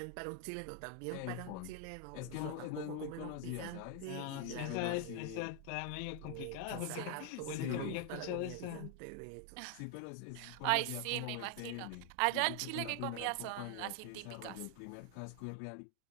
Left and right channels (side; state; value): both; different; correlation 0.00